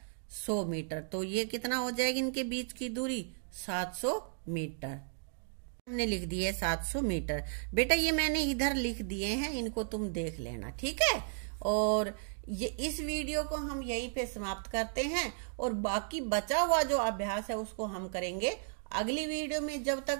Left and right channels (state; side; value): silent; left; digital silence